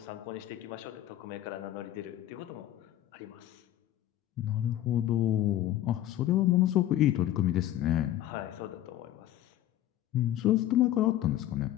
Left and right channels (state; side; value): quieter; right; 13.3 dB